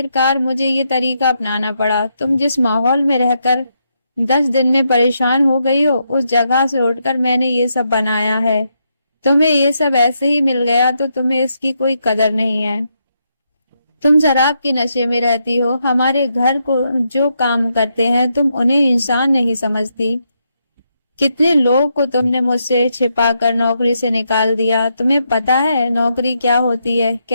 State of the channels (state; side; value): inverted; both; correlation -0.81